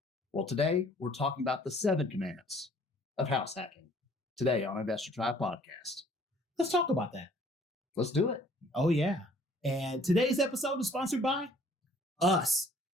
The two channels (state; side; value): normal; both; correlation 0.57